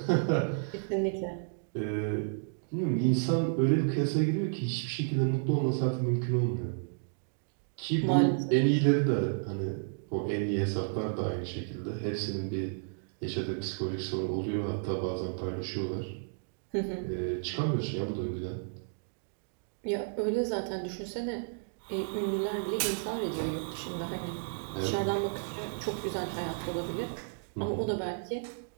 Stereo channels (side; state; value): left; silent; digital silence